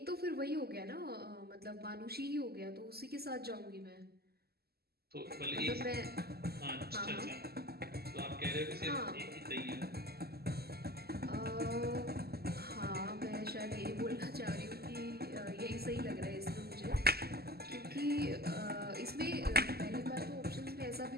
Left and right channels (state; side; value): late; left; 0.46 ms